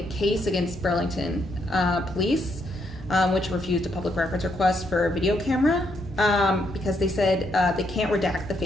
a case against Burlington Police, which refused a public records request for a video camera because they said they can't redact the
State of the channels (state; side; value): normal; both; correlation 0.76